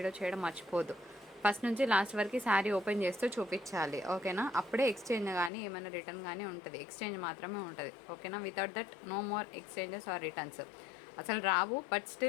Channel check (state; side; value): drops out; right; at 5.5 s